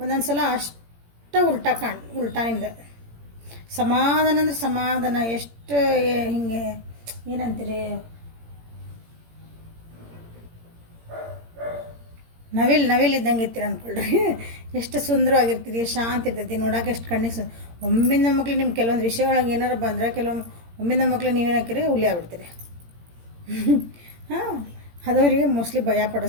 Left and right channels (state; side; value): late; left; 17 ms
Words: ಒಂದೊಂದು ಸಲ ಅಷ್ಟು ಉಲ್ಟಾ ನಿಮ್ದು ಸಮಾಧಾನ ಅಂದ್ರೆ ಸಮಾಧಾನ. ಎಷ್ಟು ಹಿಂಗೆ ಏನಂತೀರಿ, ನವಿಲ್ ಇದ್ದಂಗೆ ಇರ್ತೀರ ಅಂದ್ಕೊಳ್ರಿ. ಎಷ್ಟು ಸುಂದರವಾಗಿರ್ತೀರಿ, ಶಾಂತಿ ಇರ್ತೈತಿ ನೋಡೋಕೆ, ಎಷ್ಟು ಕಣ್ಣಿಗೆ ಒಮ್ಮಿಂದ ಮಕ್ಳು ನಿಮ್ಮ ಕೆಲವೊಂದು ವಿಷಯ ಒಳಗೆ ಏನಾರು ಬಂದರೆ ಕೆಲವೊಮ್ಮೆ ಒಮ್ಮಿಂದ ಮಕ್ಳು ನೀವೇನು ಹಾಕಿರಿ ಹುಲಿ ಆಗ್ಬಿಡ್ತೀರಿ. ಅದವರಿಗೆ ಮೋಸ್ಟ್ಲಿ ಭಯ